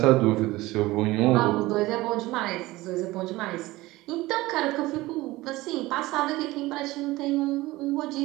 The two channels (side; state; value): left; quieter; 19.1 dB